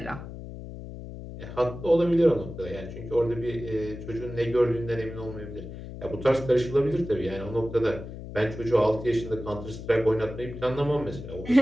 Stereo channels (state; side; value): noise; left; hum, 11 dB below the sound